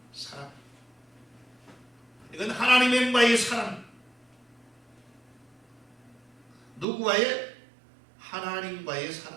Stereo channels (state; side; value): drops out; left; at 6.9 s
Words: 사랑. 이건 하나님과의 사랑. 누구와의? 하나님과의